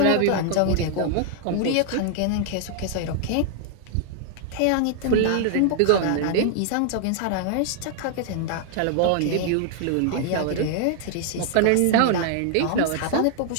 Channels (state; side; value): different; both; correlation 0.00